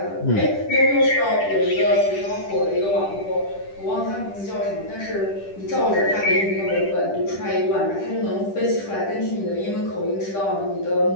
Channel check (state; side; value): late; right; 10 ms